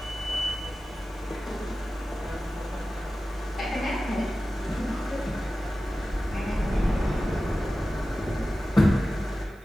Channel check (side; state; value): right; noise; hiss, 29 dB below the sound